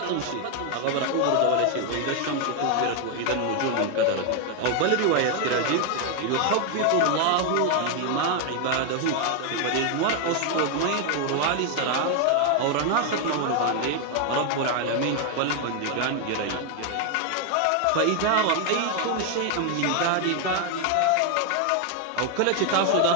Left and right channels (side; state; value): both; different; correlation 0.01